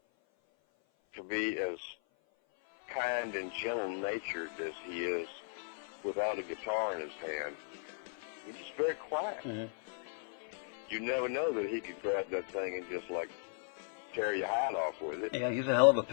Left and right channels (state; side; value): silent; right; 53 dB below the other